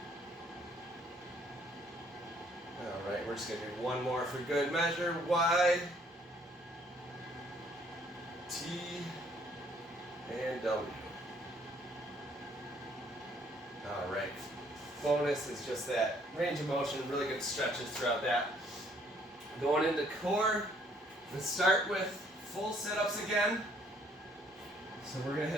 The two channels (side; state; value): both; normal; correlation 0.64